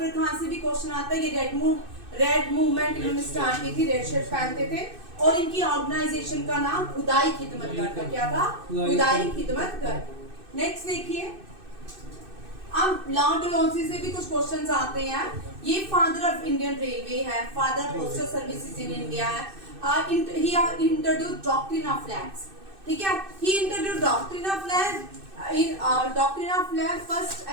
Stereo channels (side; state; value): left; late; 2.6 ms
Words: खान से भी क्वेश्चन आता है। ये रेड मूवमेंट इन्होंने स्टार्ट की थी, रेड शर्ट पहनते थे, और इनकी ऑर्गेनाइजेशन का नाम खुदाई खिदमतगर था। क्या था? खुदाई खिदमतगर। नेक्स्ट देखिए, अब लॉर्ड डलहौजी से भी कुछ क्वेश्चंस आते हैं। ये फादर ऑफ इंडियन रेलवे है, father postal services in India है। He introduced doctrine of flags. ठीक है, he introduced doctrine of flag. Doctrine of flag first